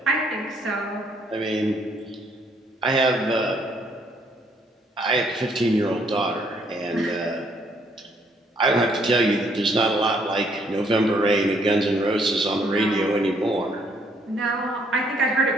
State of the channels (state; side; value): normal; both; correlation 0.67